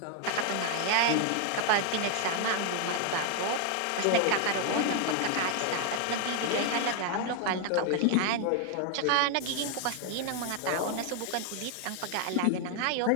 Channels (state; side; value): different; both; correlation 0.00